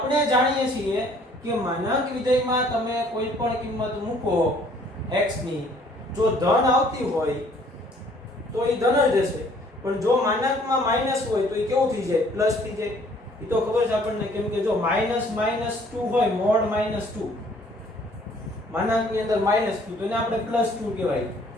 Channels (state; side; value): normal; both; correlation 0.59